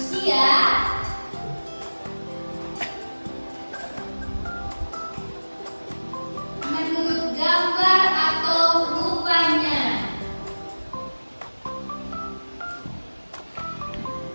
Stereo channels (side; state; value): both; inverted; correlation -1.00